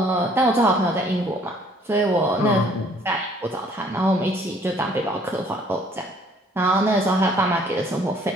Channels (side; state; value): both; normal; correlation 0.59